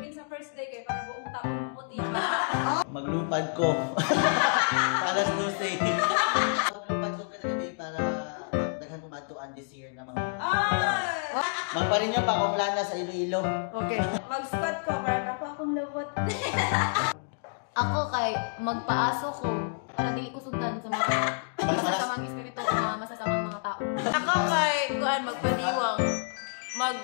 sa first day kay para buong taong puti. Maglupad ko. Para susi. Maglupad ko kita today para daghan kumatuan this year na mga. Magparin niya pa akong langa sa Iloilo. Okay. Mag-start ka para pa akong lubot. Ako kay magpaaso ko para dili ko sundan sa mga masasamang espiritu o mga masasamang mga tao. Ako kay kuan magpaniwang.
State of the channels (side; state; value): right; silent; digital silence